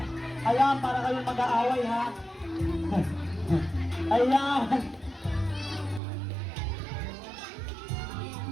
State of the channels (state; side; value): drops out; left; at 6.0 s